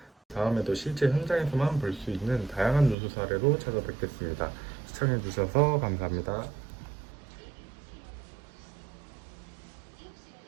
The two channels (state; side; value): drops out; left; at 3.0 s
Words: 다음에도 실제 현장에서만 볼 수 있는 다양한 누수 사례로 찾아뵙겠습니다. 시청해주셔서 감사합니다.